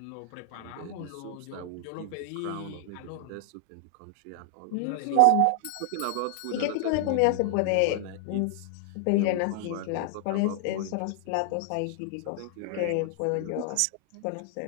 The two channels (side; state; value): both; different; correlation 0.00